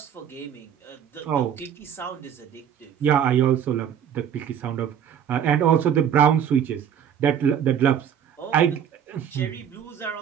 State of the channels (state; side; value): quieter; left; 8.8 dB